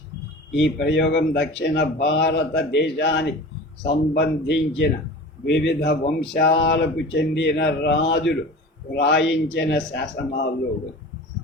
ఈ ప్రయోగం దక్షిణ భారతదేశానికి సంబంధించిన వివిధ వంశాలకు చెందిన రాజులు వ్రాయించిన శాసనాల్లో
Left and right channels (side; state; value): both; normal; correlation 0.37